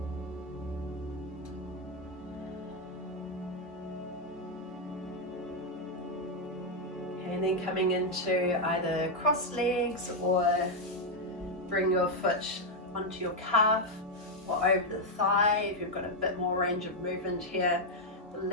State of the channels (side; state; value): both; normal; correlation 0.02